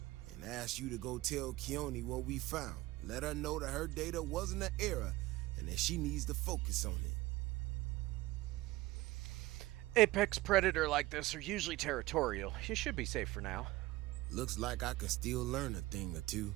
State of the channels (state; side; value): quieter; left; 18.3 dB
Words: and ask you to go tell Keone what we found. Let her know that her data wasn't an error and that she needs to focus on it. Apex predator like this are usually territorial. You should be safe for now. Looks like I can still learn a thing or two.